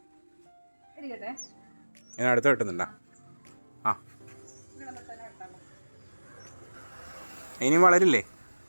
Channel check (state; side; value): inverted; both; correlation -1.00